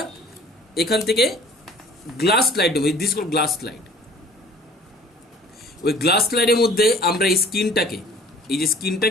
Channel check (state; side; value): normal; both; correlation 0.50